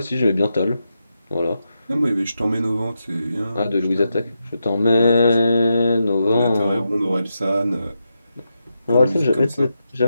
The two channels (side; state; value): both; inverted; correlation -0.86